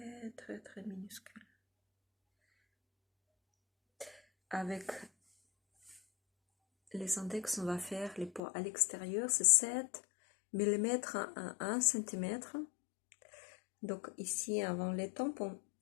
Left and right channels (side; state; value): right; drops out; at 8.4 s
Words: très, très minuscule. Avec les index, on va faire les points à l'extérieur, c'est 7 mm à 1 cm. Donc ici, avant les tempes, on